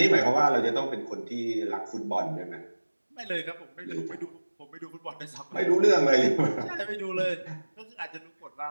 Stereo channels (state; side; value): inverted; both; correlation -1.00